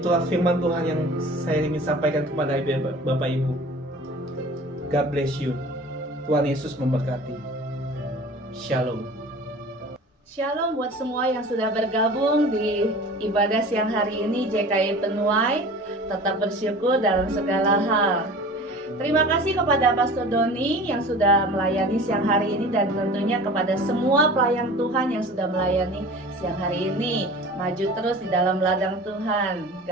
firman Tuhan yang saya ingin sampaikan kepada Bapak Ibu. God bless you. Tuhan Yesus memberkati. Shalom. Shalom buat semua yang sudah bergabung di ibadah siang hari ini JKI Penuai. Tetap bersyukur dalam segala hal. Terima kasih kepada Pastor Doni yang sudah melayani siang hari ini, dan tentunya kepada semua pelayan Tuhan yang sudah melayani siang hari ini. Maju terus di dalam ladang Tuhan.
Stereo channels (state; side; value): normal; both; correlation 0.40